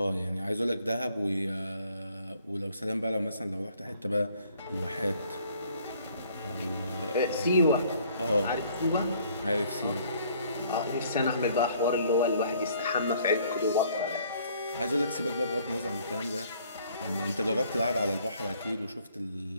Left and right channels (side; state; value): both; inverted; correlation -0.60